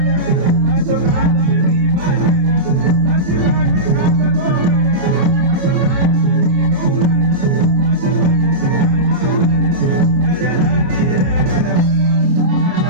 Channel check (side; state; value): left; late; 28 ms